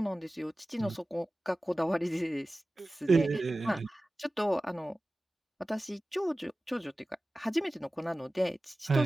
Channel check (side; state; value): both; normal; correlation 0.96